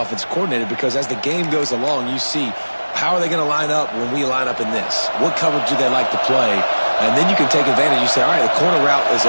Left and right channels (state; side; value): inverted; both; correlation -1.00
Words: coordinator, because as the game goes along, you see how are they going to line up when we line up in this? What coverage do they like to play? And then you can take advantage. You say, all right, the corner route is